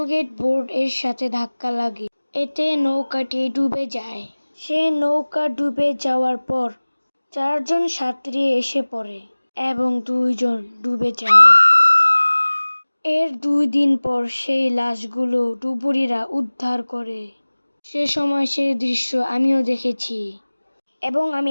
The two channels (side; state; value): both; inverted; correlation -1.00